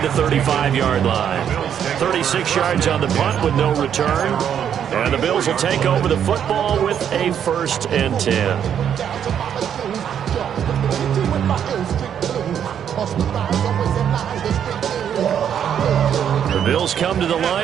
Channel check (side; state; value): left; quieter; 8.9 dB